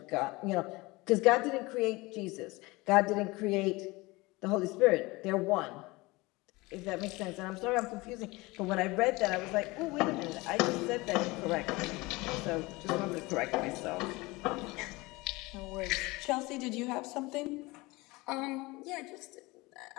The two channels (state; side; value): quieter; right; 22.8 dB